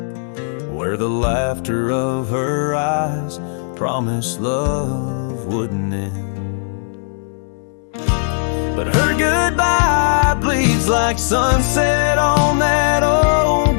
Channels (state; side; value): silent; right; digital silence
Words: where the laughter of her eyes promised love wouldn't end. But her goodbye bleeds like sunset on that